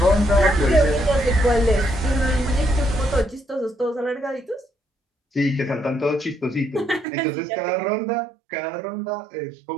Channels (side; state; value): left; drops out; at 7.1 s